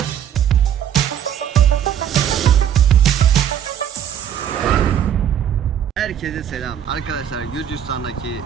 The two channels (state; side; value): quieter; left; 9.4 dB